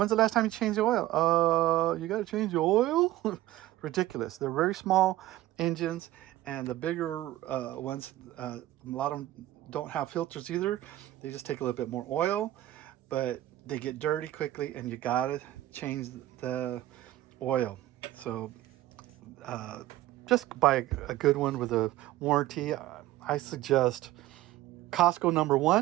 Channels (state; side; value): quieter; left; 15.2 dB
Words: the last time you changed the oil? You got to change the oil? Ridiculous. They're very small engines, and the bigger ones, a lot of them don't have filters either. They just take a little bit more oil, but they get dirty quickly, and you got to change the oil. So just buy a good one with a warranty. I suggest Costco